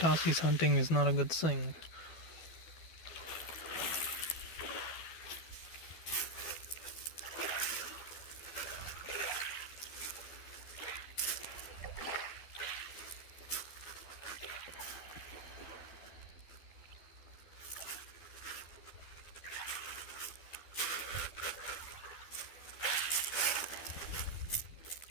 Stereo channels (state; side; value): late; right; 12 ms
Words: hunting is not a good thing.